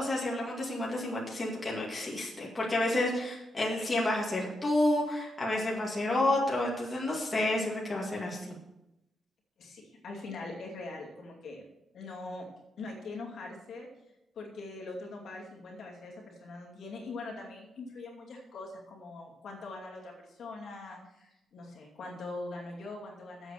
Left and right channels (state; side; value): normal; both; correlation 0.83